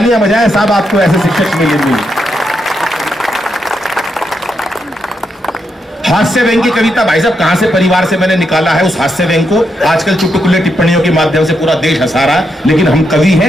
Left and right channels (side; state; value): both; normal; correlation 0.82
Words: बजाएं साहब, आपको ऐसे शिक्षक मिलेंगे। हास्य व्यंग की कविता भाई साहब कहां से परिवार से मैंने निकाला है उस हास्य व्यंग को। आजकल चुटकुले टिप्पणियों के माध्यम से पूरा देश हंसा रहा है, लेकिन हम कवि